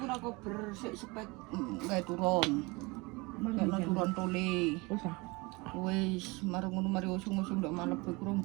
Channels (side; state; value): left; quieter; 25.4 dB